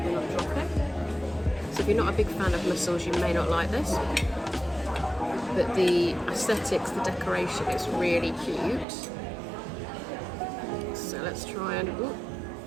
and not drop it. So if you're not a big fan of mussels, you may not like this. But the aesthetics, the decoration is really cute. So let's try and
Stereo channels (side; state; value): left; drops out; at 8.8 s